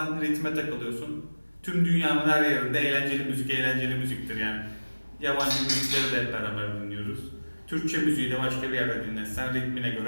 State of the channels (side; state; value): both; inverted; correlation -1.00